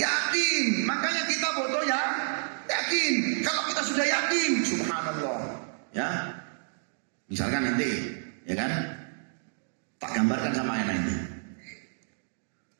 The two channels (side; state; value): left; silent; digital silence